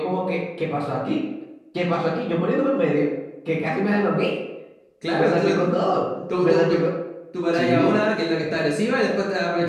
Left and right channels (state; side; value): identical; both; correlation 1.00